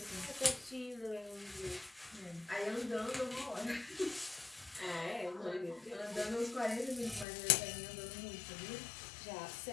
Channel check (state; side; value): drops out; right; at 7.2 s